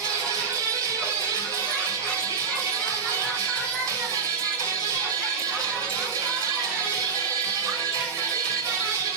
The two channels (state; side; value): quieter; left; 5.6 dB